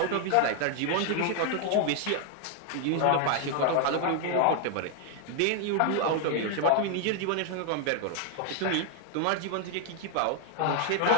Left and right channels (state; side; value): different; both; correlation 0.00